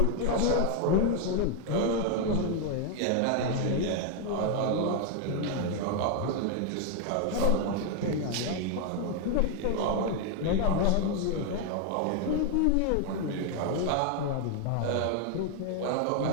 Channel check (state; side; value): different; both; correlation 0.00